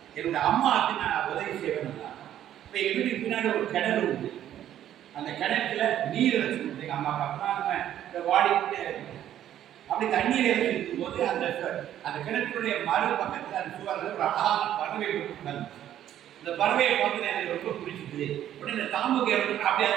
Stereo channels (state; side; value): quieter; left; 11.4 dB